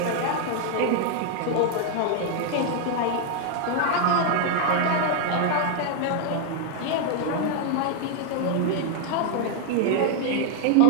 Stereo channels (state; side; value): different; both; correlation 0.01